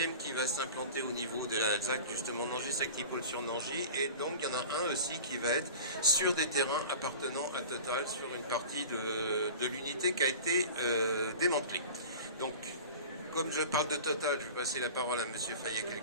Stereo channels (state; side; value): inverted; both; correlation -0.36